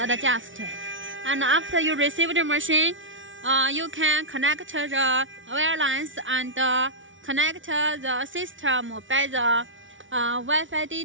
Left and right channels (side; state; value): left; late; 0.56 ms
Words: adjust. And after you receive the machine, you can connect the wire lines and connect the system by the Wi-Fi